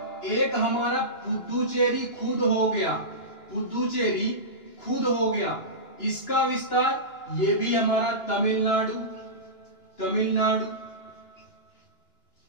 एक हमारा पुदुचेरी खुद हो गया। पुदुचेरी खुद हो गया, इसका विस्तार ये भी हमारा तमिलनाडु। तमिलनाडु।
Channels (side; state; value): right; late; 2.9 ms